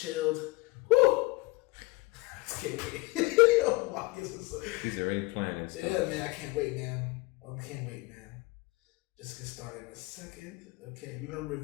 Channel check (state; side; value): quieter; right; 23.1 dB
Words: Woo! I just can't wait. He's already planning. Yeah, man, I can't wait, man. Just get started in a second. Okay, we're going to